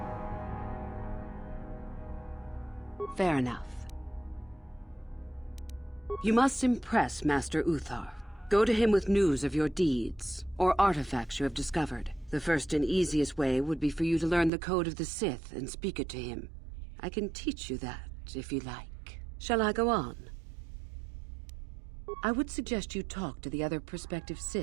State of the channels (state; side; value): drops out; left; at 14.5 s